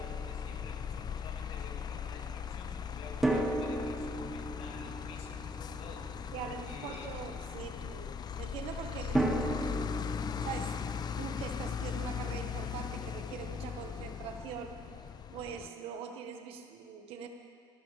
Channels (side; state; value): both; normal; correlation 0.66